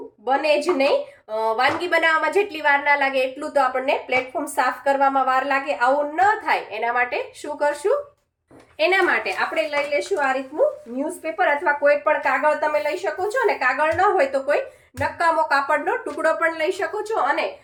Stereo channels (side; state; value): both; identical; correlation 1.00